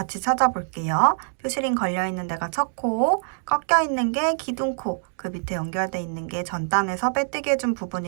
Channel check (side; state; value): left; silent; digital silence